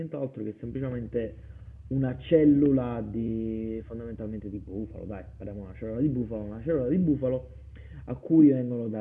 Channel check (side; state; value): both; identical; correlation 1.00